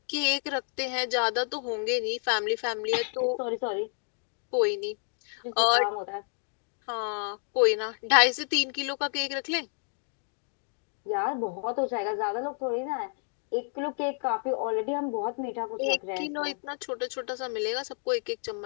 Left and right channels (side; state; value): right; silent; 58 dB below the other